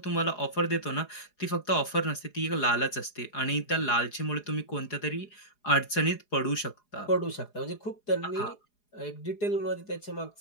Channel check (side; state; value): right; late; 4.8 ms